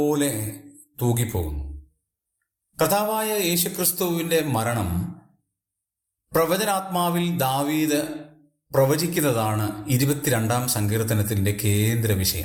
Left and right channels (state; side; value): identical; both; correlation 1.00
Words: തൂകിപ്പോകുന്നു. കർത്താവായ യേശുക്രിസ്തുവിന്റെ മരണം പ്രവചനാത്മാവിൽ ദാവീദ് പ്രവചിക്കുന്നതാണ് 22 സങ്കീർത്തനത്തിന്റെ കേന്ദ്ര